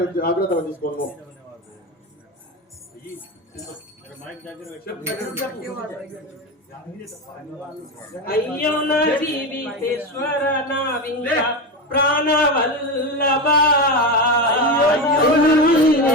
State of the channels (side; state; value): both; normal; correlation 0.18